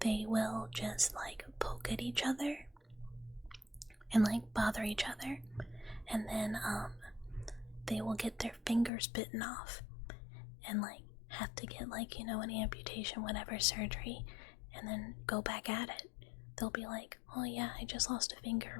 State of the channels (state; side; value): drops out; right; at 8.9 s